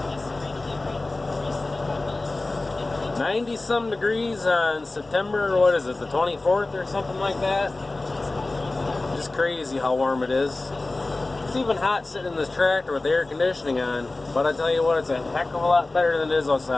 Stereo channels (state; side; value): quieter; right; 3.1 dB